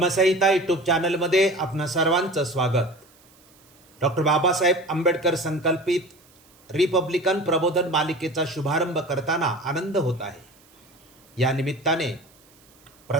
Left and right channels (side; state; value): right; noise; hiss, 29 dB below the sound